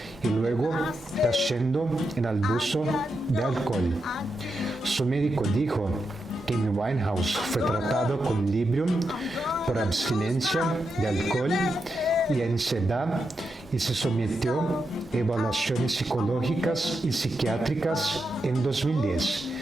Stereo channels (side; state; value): both; normal; correlation 0.86